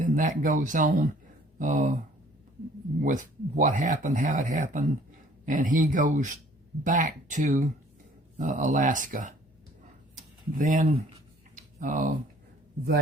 that goes on with what happened, how it happened, and he goes back to Alaska. Then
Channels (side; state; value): both; normal; correlation 0.56